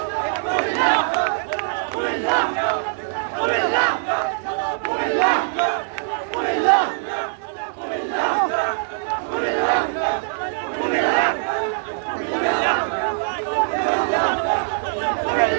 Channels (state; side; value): silent; left; 64 dB below the other